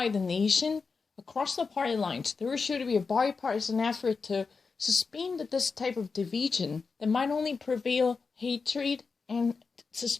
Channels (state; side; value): quieter; right; 4.8 dB